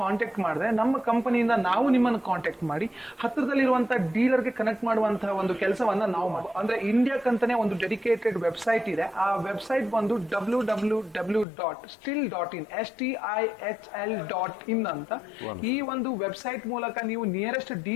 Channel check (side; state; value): right; drops out; at 11.5 s